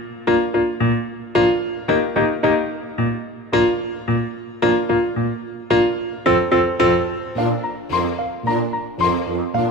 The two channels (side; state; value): both; normal; correlation 0.44